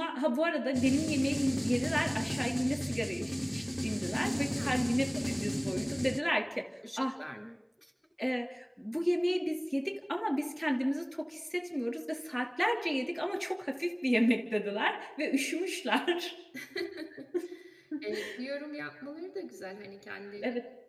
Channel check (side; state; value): both; identical; correlation 1.00